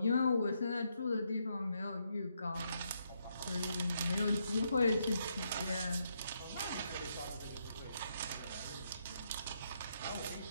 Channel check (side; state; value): both; inverted; correlation -0.77